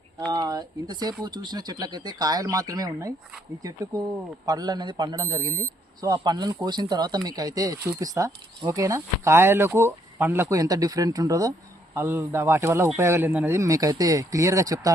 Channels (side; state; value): both; normal; correlation 0.70